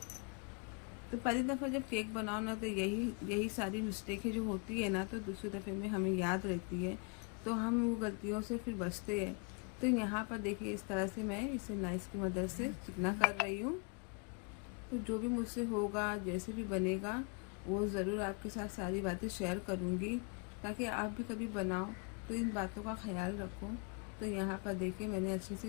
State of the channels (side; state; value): right; quieter; 35.1 dB